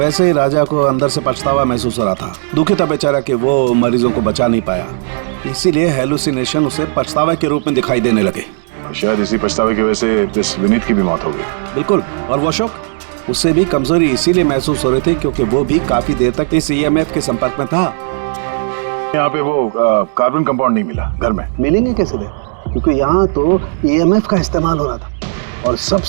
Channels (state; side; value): silent; left; 58 dB below the other